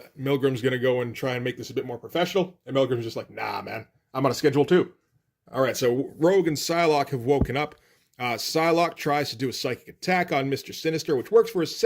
Milgram's going to go and try and make this a bit more professional. And Milgram's just like, nah, man, I'm on a schedule too. All right, so Rogue and Psylocke have woken up. Psylocke tries to do a psychic attack on Mr. Sinister, which works for a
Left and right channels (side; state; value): both; identical; correlation 1.00